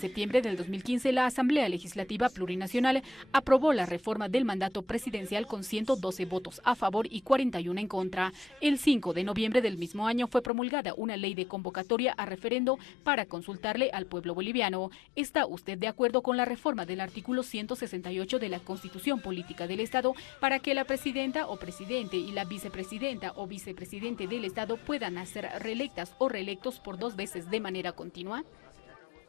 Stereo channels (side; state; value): right; drops out; at 10.5 s